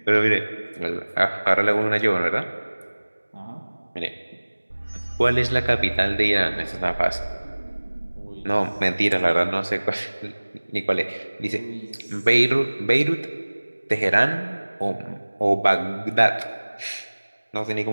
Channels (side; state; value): both; inverted; correlation -1.00